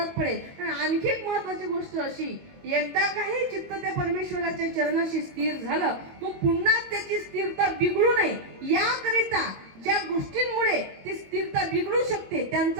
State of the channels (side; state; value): left; late; 22 ms